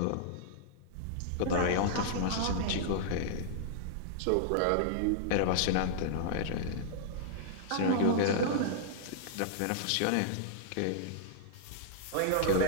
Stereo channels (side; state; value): both; different; correlation -0.01